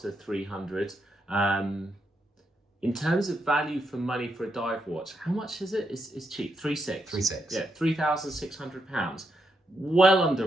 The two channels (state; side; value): normal; both; correlation 0.81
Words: 300. In terms of value for money for a dive watch, how much is it? It's cheap. 3.6. 3.6. Yeah, £3,600. Well under